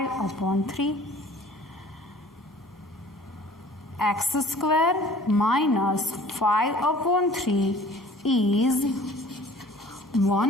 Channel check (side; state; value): both; normal; correlation 0.50